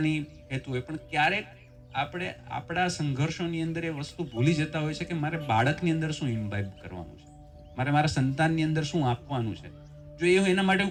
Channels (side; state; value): both; identical; correlation 1.00